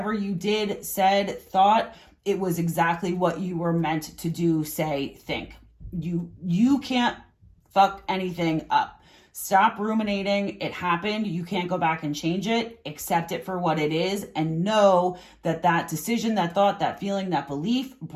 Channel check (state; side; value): identical; both; correlation 1.00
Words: you did, said, thought, it was exactly what you were meant to do, say, think. You can't fuck anything up. Stop ruminating. It happened. You can't go back and change it. Accept it for what it is and know that that decision, that thought, that feeling, that belief